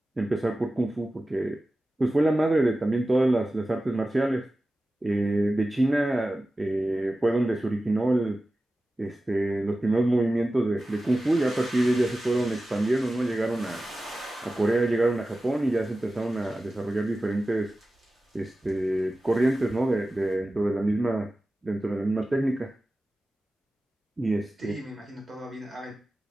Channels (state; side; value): normal; both; correlation 0.95